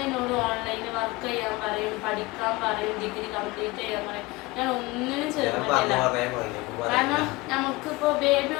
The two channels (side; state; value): right; quieter; 22.1 dB